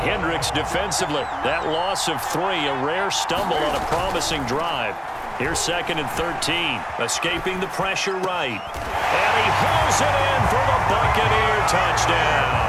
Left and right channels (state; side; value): identical; both; correlation 1.00